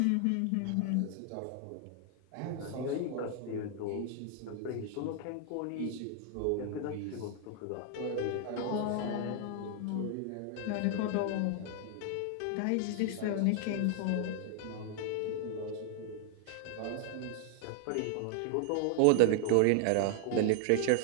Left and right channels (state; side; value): different; both; correlation 0.00